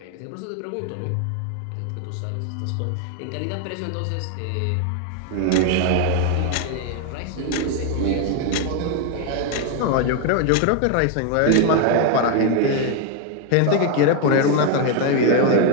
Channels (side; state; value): both; different; correlation 0.01